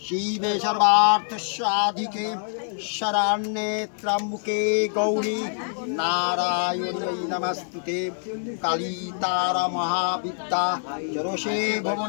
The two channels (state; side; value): silent; right; 61 dB below the other